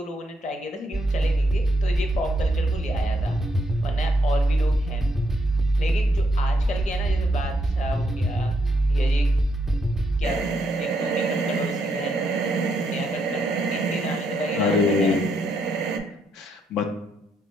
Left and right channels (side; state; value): both; normal; correlation 0.77